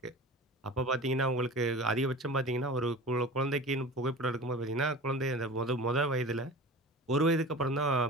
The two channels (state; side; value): normal; both; correlation 0.36